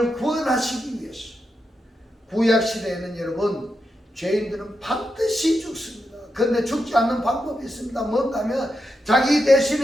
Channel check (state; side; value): normal; both; correlation 0.86